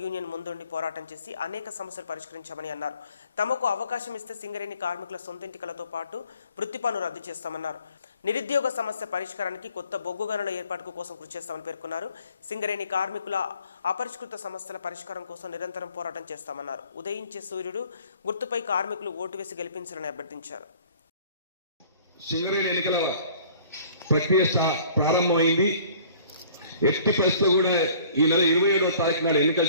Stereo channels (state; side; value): inverted; both; correlation -0.54